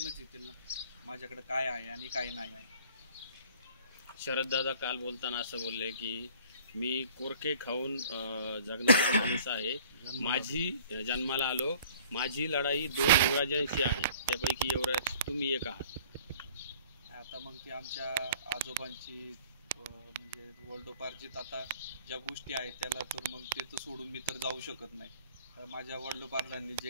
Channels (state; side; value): inverted; both; correlation -0.52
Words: येतील ना माझ्याकडे काय आहे आणि काय नाही आहे. शरददादा काल बोलताना असं बोलले की मी कोरके खाऊन जगणारा माणूस आहे. माझी जन्माला आलो, माझी लढाई 2 युवराजांशी आहे, त्यापैकी युवराज तुम्ही एक आहात. आता मग ती आमच्या आजोबांची म्हणजे वडिलोपार्जित आता ज्या गोष्टी आहेत त्याला तर मग ते तर सोडून मी तर जाऊ शकत नाही. माझ्या वडिलोपार्जांनी